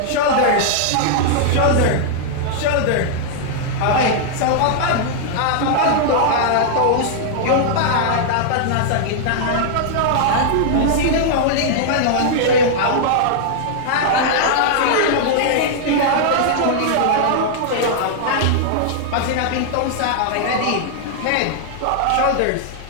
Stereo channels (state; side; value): different; both; correlation -0.01